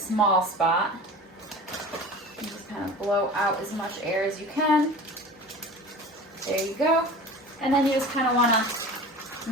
spot. You just kind of blow out as much air as you can. There you go. And then you just kind of want to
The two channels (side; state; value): both; normal; correlation 0.37